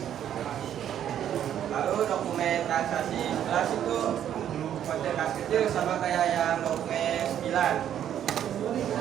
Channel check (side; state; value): left; quieter; 10.2 dB